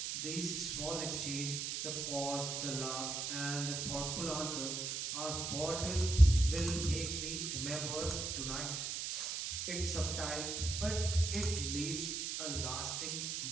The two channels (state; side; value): noise; right; hiss, 2 dB below the sound